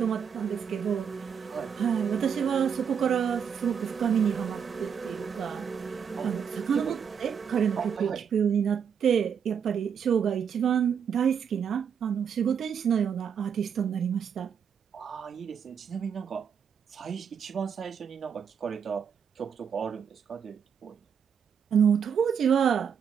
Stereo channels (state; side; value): quieter; left; 7.4 dB